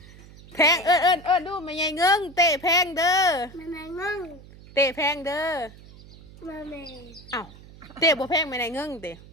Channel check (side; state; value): right; noise; hum, 20 dB below the sound